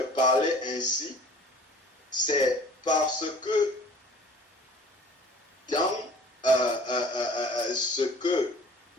ainsi, c'est parce que dans ce que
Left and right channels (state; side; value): normal; both; correlation 0.48